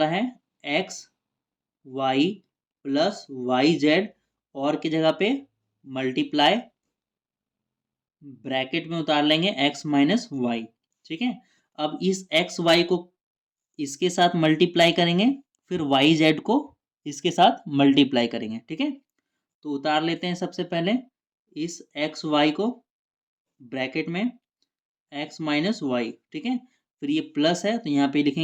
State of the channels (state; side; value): identical; both; correlation 1.00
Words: है x y + yz, और की जगह पे मल्टीप्लाई, ब्रैकेट में उतार लेंगे x - y, ठीक है। अब इस x y को इसके साथ मल्टीप्लाई करेंगे, फिर वाई जेड को इसके साथ मल्टीप्लाई करेंगे, ठीक है। तो उतार लेते हैं सबसे पहले इस एक्स वाई को ब्रैकेट में, x - y, ठीक है। फिर ये प्लस है तो यहाँ पे